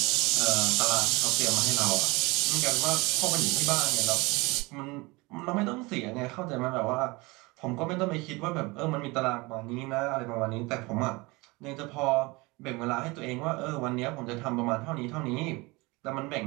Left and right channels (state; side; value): quieter; left; 24.2 dB